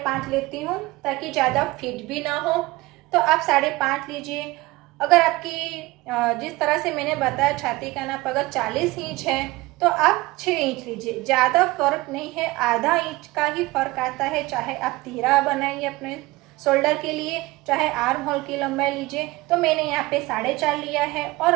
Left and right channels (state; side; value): quieter; left; 20.7 dB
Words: लेती हूँ ताकि ज़्यादा फिट भी ना हो। तो आप 5.5 लीजिए। अगर आपकी जिस तरह से मैंने बताया छाती का नाप अगर 40 इंच है तो आप 6 इंच लीजिए। ज़्यादा फर्क नहीं है, आधा इंच का ही फर्क आता है। चाहे आप तीरा बनाइए अपने शोल्डर के लिए, चाहे आर्म होल की लंबाई लीजिए। तो मैंने यहाँ पे 4.5 लिया है और